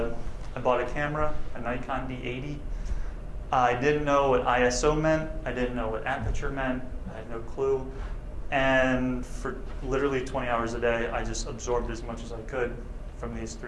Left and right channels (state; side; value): identical; both; correlation 1.00